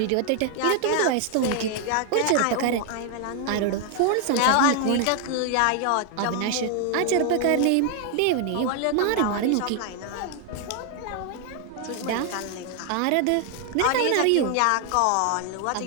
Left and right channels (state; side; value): different; both; correlation 0.00